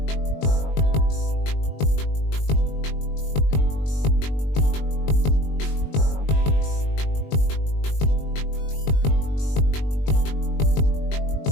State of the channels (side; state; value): right; late; 20 ms